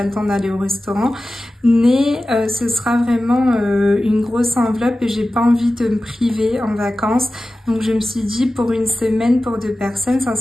le temps d'aller au restaurant. Mais ce sera vraiment une grosse enveloppe et j'ai pas envie de me priver en vacances. Donc je me suis dit pour une semaine pour deux personnes,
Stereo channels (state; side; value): normal; both; correlation 0.95